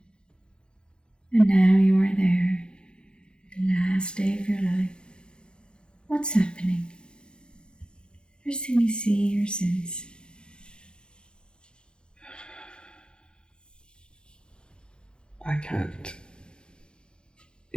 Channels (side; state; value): right; late; 0.050 ms